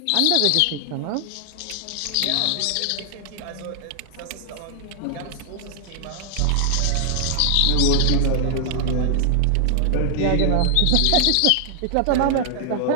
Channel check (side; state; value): both; different; correlation 0.00